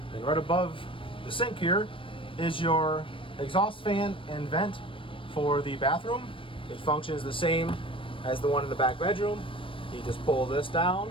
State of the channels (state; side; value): late; right; 0.25 ms